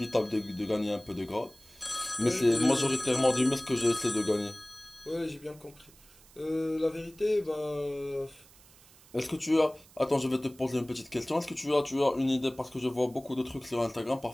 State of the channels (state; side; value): noise; right; hiss, 25 dB below the sound